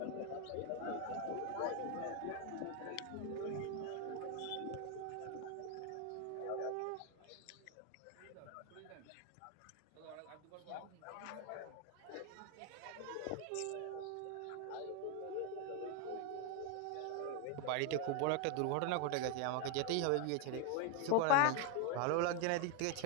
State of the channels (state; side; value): different; both; correlation 0.01